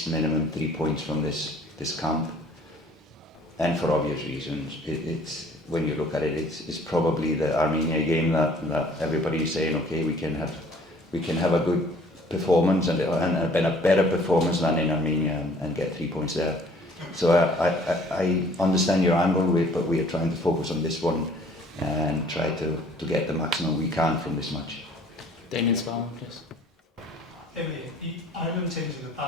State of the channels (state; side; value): normal; both; correlation 0.55